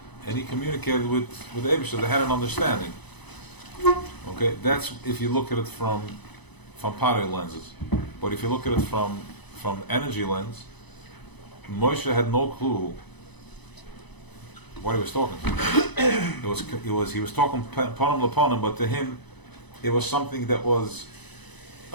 and he communicated with Eibishter. They had an understanding. Okay, that's if you look at it from Potter lenses. But if you look at it from energy lens, Moshe had no clue what he was talking to. He was talking panim lepanim, but to him, it was something that was.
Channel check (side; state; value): right; late; 0.99 ms